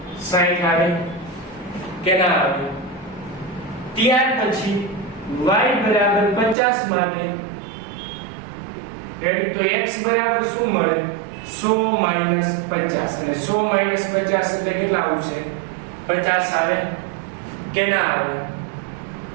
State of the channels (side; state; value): left; drops out; at 6.6 s